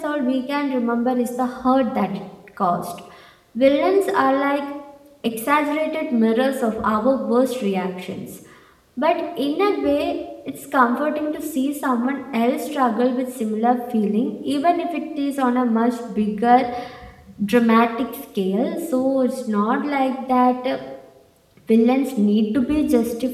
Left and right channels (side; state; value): both; identical; correlation 1.00